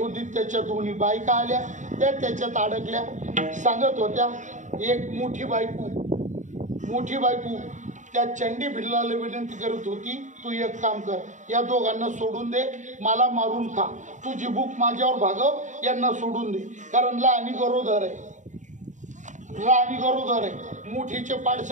त्याच्या दोन्ही बायका आल्या. त्या त्याच्यात अडकल्या. सांगत होत्या, एक मोठी बायको त्या चंडी भिल्लाला विनंती करत होती, तू एक काम कर, या दोघांना सोडून दे, मला मारून खा, तुझी भूक माझ्यावर भागव, यांना सोडून दे. कारण लहानी गरोदर आहे. मोठीचे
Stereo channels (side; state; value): left; late; 0.36 ms